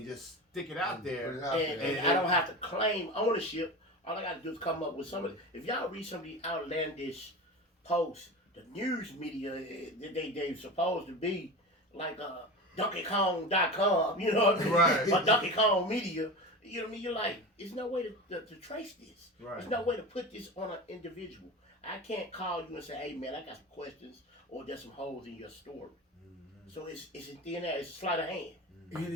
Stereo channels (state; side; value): normal; both; correlation 0.28